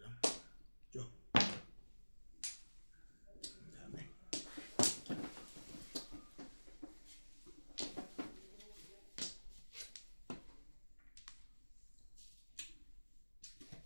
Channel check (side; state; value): both; inverted; correlation -1.00